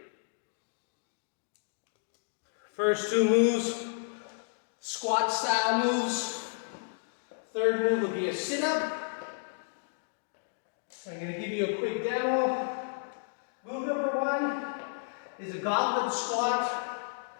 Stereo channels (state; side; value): silent; right; digital silence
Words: First two moves, squat style moves. Third move will be a sit-up. I'm going to give you a quick demo. Move number one is a goblet squat.